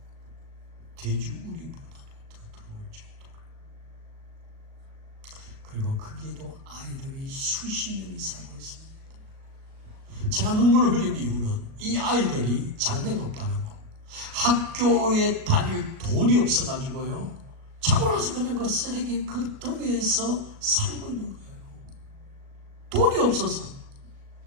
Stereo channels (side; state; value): left; late; 37 ms